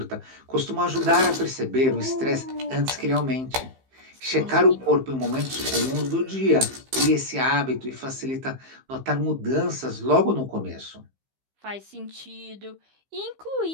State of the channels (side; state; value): left; late; 15 ms